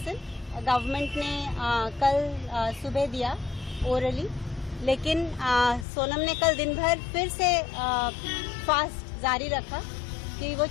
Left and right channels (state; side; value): drops out; right; at 5.9 s